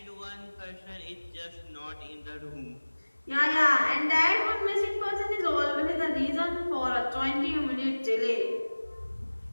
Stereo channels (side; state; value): both; inverted; correlation -1.00